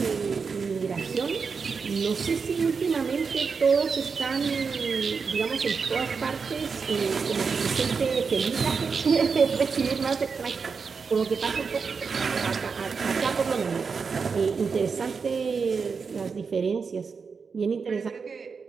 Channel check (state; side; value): quieter; left; 5.4 dB